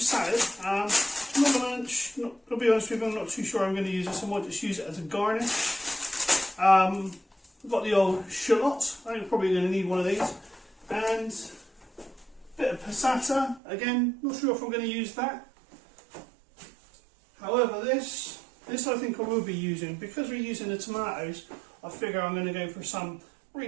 I'll be honest with you, I'm not too sure I'm going to use this. I might just use it as a garnish. I've got the old shallots. I'm probably going to need one of these, and a bit of passata. Again, not sure if I'm going to use that. However, this I think I will be using, because we're using the tomatoes. I figure I'm going to go for some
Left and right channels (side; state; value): left; drops out; at 13.6 s